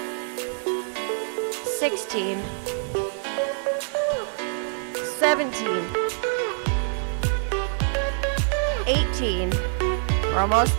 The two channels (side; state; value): left; silent; digital silence